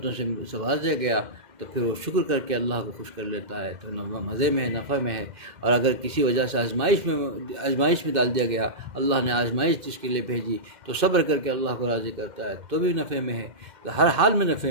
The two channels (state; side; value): late; left; 2.1 ms